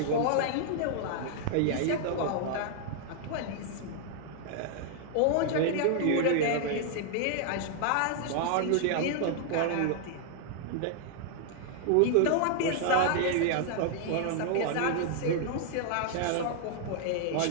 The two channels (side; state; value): both; different; correlation -0.01